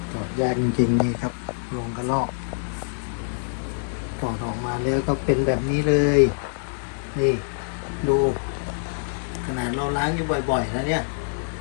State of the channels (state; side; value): silent; right; 62 dB below the other